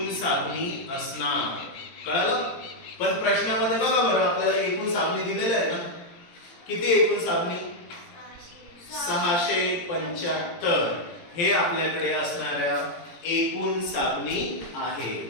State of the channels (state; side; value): late; right; 18 ms